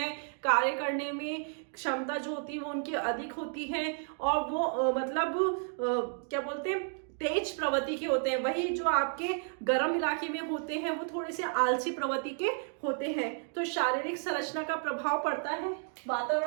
कार्य करने में क्षमता जो होती है वो उनकी अधिक होती है, और वो क्या बोलते हैं, तेज प्रवृत्ति के होते हैं। वही जो आपके गर्म इलाके में होते हैं वो थोड़े से आलसी प्रवृत्ति के होते हैं। तो शारीरिक संरचना का प्रभाव पड़ता है।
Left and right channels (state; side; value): silent; left; 56 dB below the other